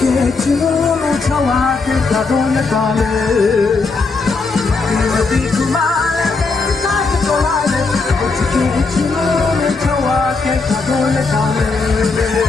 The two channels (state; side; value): quieter; right; 4.1 dB